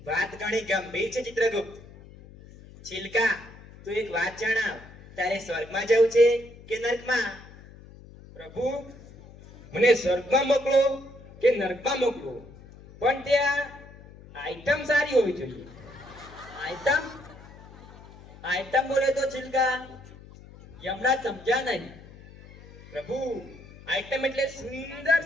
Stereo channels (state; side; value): noise; left; hum, 20 dB below the sound